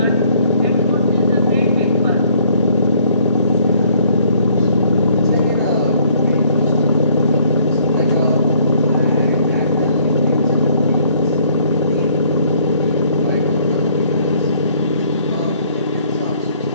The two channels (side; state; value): both; inverted; correlation -0.61